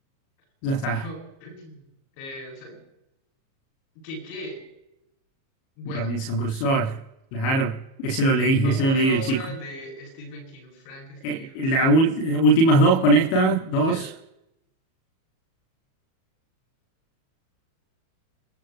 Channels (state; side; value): late; right; 37 ms